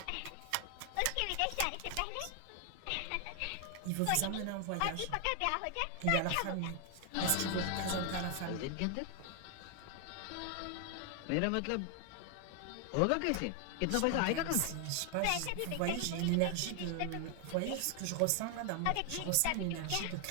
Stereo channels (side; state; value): both; different; correlation 0.00